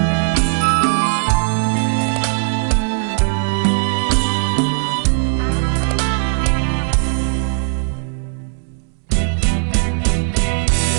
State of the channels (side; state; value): left; silent; 68 dB below the other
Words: បងតែម្ដងមិនត្រូវនឹកសងផងជួជាគ្នាបែងដងអូ